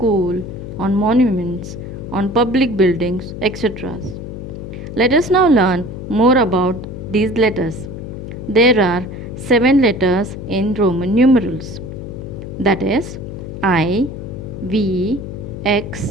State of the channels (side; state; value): left; noise; hum, 9 dB below the sound